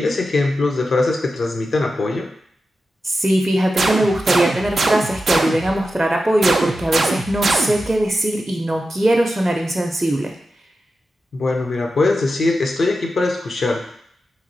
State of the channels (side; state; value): both; normal; correlation 0.91